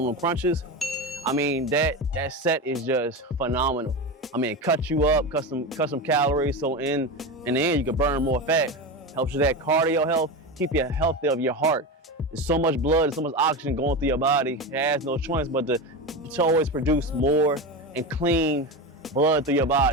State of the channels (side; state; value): both; normal; correlation 0.21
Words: crunches. I mean, that set is just phenomenal. I mean, it cuts you up, cut some calories, so in the end you can burn more fat. Helps with that cardio health, keep you healthy of your heart. There's so much blood and so much oxygen going through your body. It has no choice but to always produce more and clean blood through your